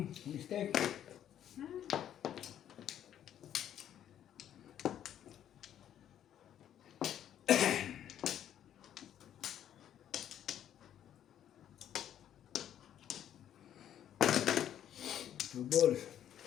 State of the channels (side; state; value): right; quieter; 10.5 dB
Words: Mistake. Two balls.